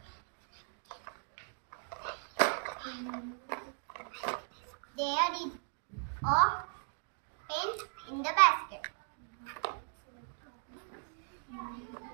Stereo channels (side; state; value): left; silent; 53 dB below the other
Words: There is a pen in the basket.